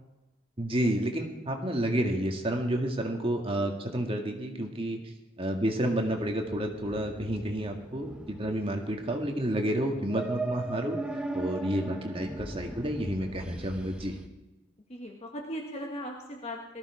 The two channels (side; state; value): both; normal; correlation 0.72